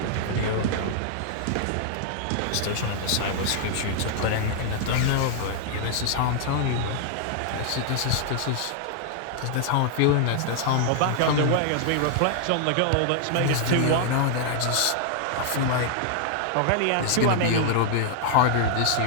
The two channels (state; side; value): different; both; correlation 0.00